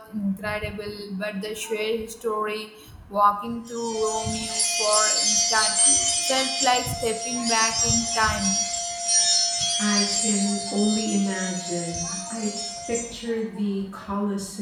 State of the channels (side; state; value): both; identical; correlation 1.00